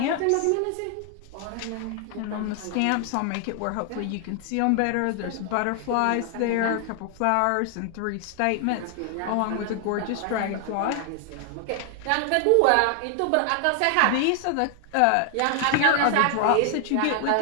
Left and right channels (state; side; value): different; both; correlation 0.00